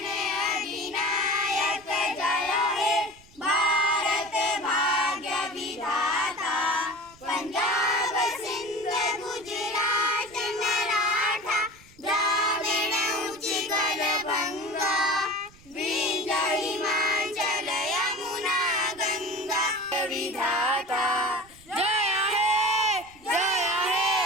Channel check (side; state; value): right; noise; rumble, 25 dB below the sound